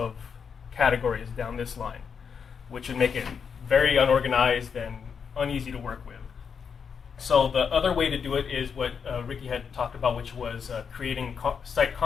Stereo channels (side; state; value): right; quieter; 6.5 dB